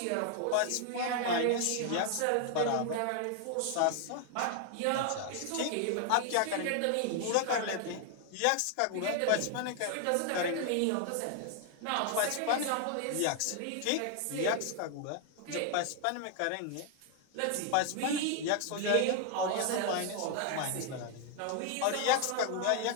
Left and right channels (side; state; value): both; different; correlation 0.00